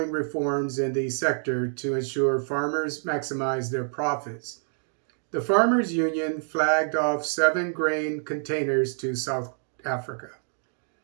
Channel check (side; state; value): left; silent; digital silence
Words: reforms in the sector to ensure farmers maximize their profits. The Farmers Union flagged off 7 grain containers to South Africa.